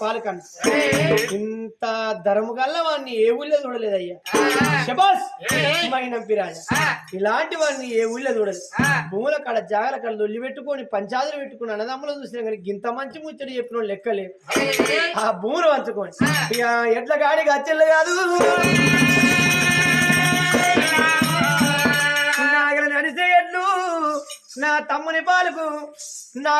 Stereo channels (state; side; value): identical; both; correlation 1.00